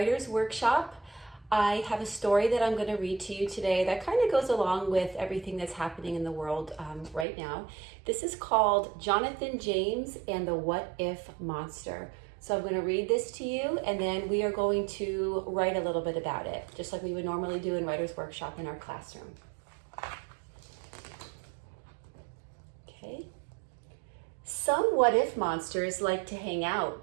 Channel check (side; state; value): left; drops out; at 7.2 s